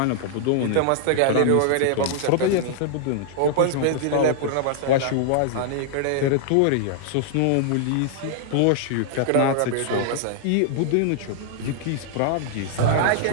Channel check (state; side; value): different; both; correlation -0.01